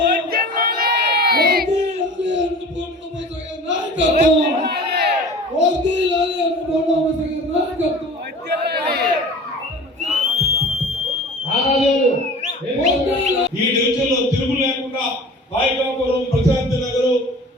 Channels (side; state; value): both; normal; correlation 0.41